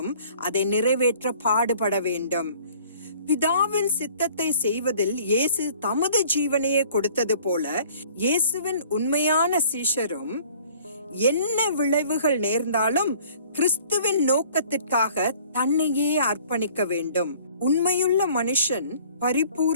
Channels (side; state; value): both; inverted; correlation -0.52